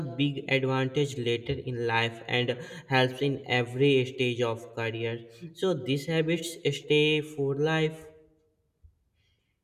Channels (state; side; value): identical; both; correlation 1.00